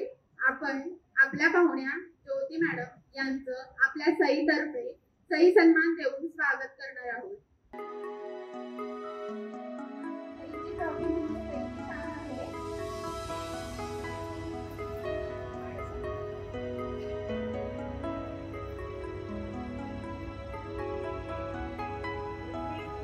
आपण आपल्या पाहुण्या ज्योती मॅडम यांचं आपल्या सईतर्फे सई सन्मान देऊन स्वागत करणार आहोत।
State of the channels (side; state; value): both; identical; correlation 1.00